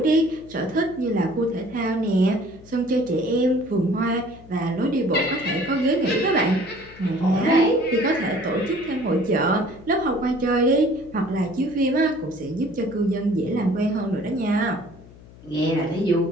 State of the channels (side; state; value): left; noise; hum, 21 dB below the sound